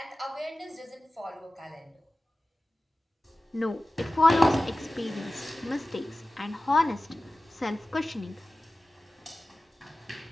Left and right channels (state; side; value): normal; both; correlation 0.96